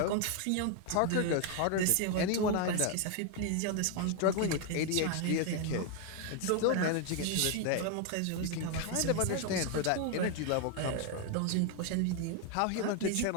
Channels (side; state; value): both; different; correlation 0.01